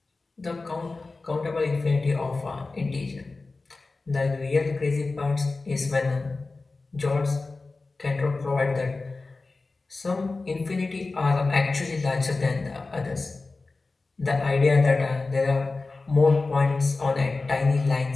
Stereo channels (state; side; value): quieter; right; 3.6 dB